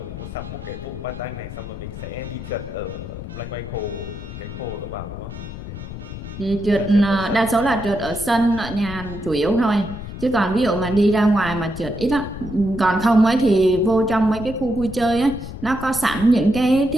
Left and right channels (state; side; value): noise; left; rumble, 10 dB below the sound